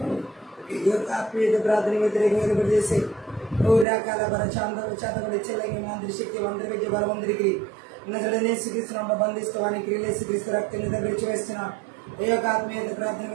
ఈ యొక్క ఆత్మీయత ప్రార్థన వ్యతిరేకంగా చేసే రకాల చాతబడి చెల్లగి మంత్రి శక్తి మంత్రి విద్య బలవంతుడికి యేసుక్రీస్తును బంధిస్తవానికి యేసుక్రీస్తు రక్తం చేత విడిచివేస్తున్న ఈ యొక్క ఆత్మీయత ప్రార్థన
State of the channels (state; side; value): drops out; left; at 3.9 s